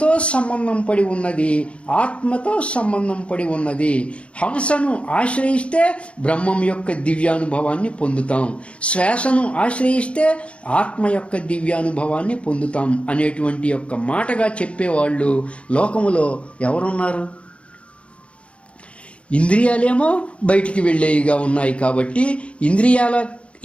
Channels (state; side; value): late; right; 0.061 ms